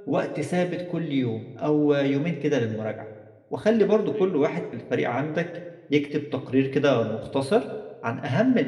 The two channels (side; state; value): both; identical; correlation 1.00